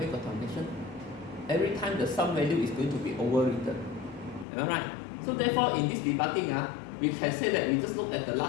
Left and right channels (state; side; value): drops out; right; at 4.5 s